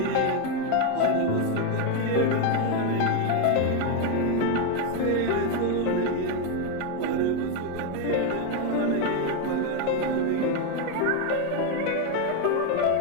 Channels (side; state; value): both; different; correlation 0.02